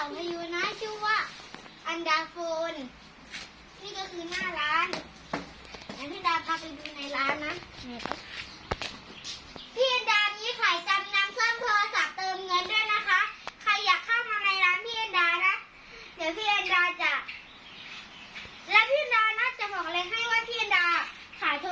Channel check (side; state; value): both; identical; correlation 1.00